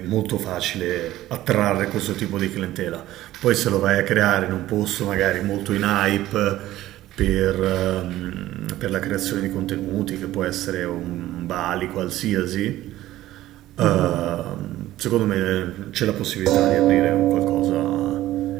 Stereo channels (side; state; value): left; quieter; 14.9 dB